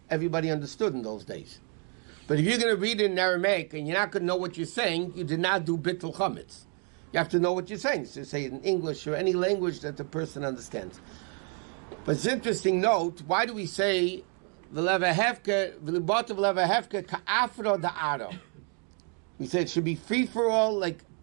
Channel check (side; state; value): left; quieter; 39.6 dB